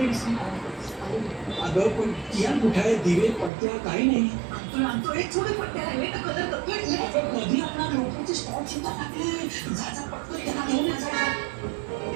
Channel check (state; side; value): drops out; left; at 3.5 s